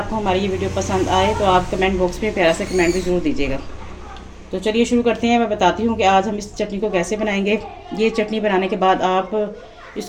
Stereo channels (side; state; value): both; identical; correlation 1.00